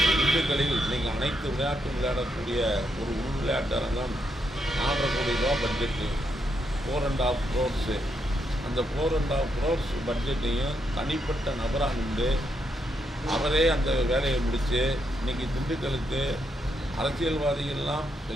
திண்டுக்கல்லில் இன்றைக்கி அனைத்து விளையாட்டும் விளையாடக்கூடிய ஒரு உள் விளையாட்டு அரங்கம் 4.5 கோடி ரூபா பட்ஜெட்டு, 4.5 crores. அந்த 4.5 crores பட்ஜெட்டையும் தனிப்பட்ட நபராக நின்று அவரே அந்த வேலையை முடித்து இன்றைக்கி திண்டுக்கலுக்கு அரசியல்வாதிகள்லாம்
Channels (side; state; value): both; normal; correlation 0.80